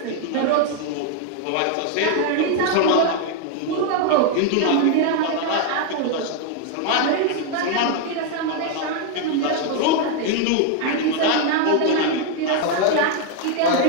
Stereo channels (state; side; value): different; both; correlation 0.01